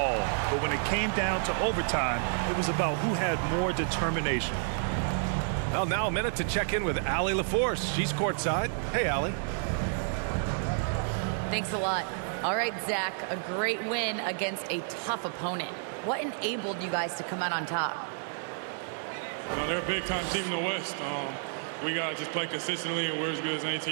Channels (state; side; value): silent; left; digital silence